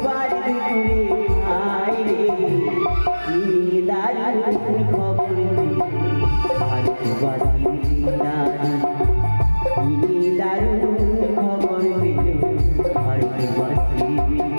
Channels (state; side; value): inverted; both; correlation -1.00